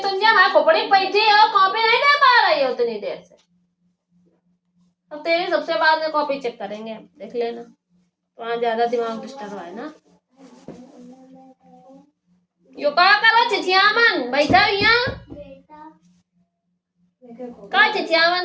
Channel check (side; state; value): both; identical; correlation 1.00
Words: जब मैं खोपड़ी बैठी हो कॉपी नहीं दे पा रही हो उतनी देर से। अब तेरी सबसे बाद में कॉपी चेक करेंगे हम, देख लेना। वहाँ ज्यादा दिमाग डिस्टर्ब है ना। यो का करो चिचियामन बैठा यहाँ का